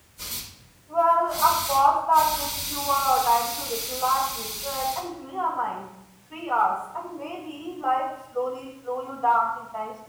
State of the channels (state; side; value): identical; both; correlation 1.00